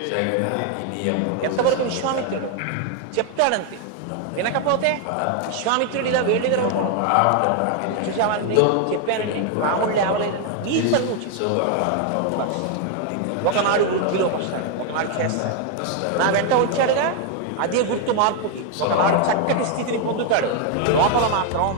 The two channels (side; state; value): both; different; correlation 0.00